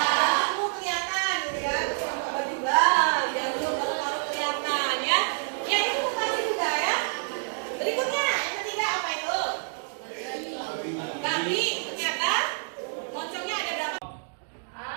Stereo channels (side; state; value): left; silent; 60 dB below the other